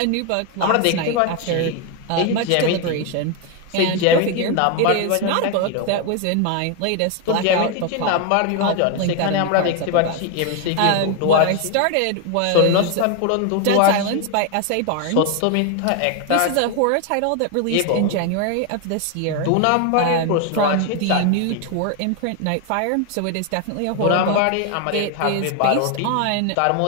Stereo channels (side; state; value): both; different; correlation 0.01